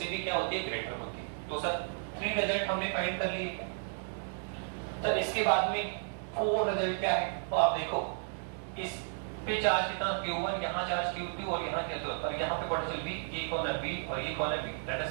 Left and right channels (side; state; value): left; silent; digital silence